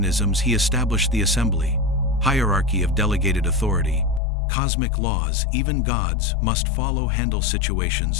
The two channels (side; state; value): right; drops out; at 4.2 s